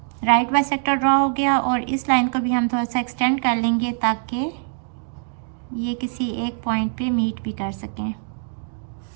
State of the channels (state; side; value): silent; left; digital silence